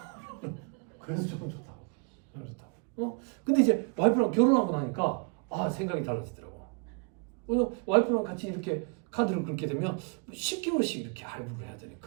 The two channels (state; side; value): quieter; left; 35.9 dB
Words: 그래서 조금 좋다고. 좀 좋다고. 근데 이제 와이프랑 결혼하고 나니까 생각이 달라지더라고. 왜냐면 와이프랑 같이 이렇게 카드를 긁게 되면 10개월씩 이렇게 할부를 해야